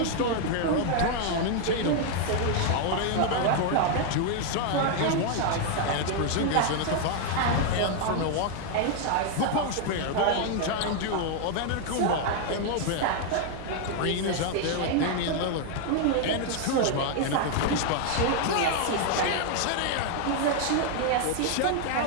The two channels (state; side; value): different; both; correlation 0.00